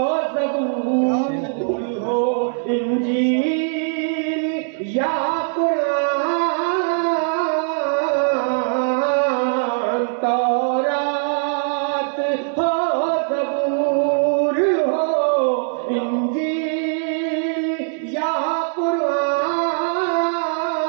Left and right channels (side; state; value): left; silent; digital silence